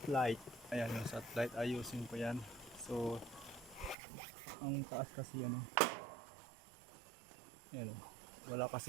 Ayan yung satellite, ayusin ko yan. So ang taas kasi yan ayan, wala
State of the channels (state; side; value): drops out; left; at 4.0 s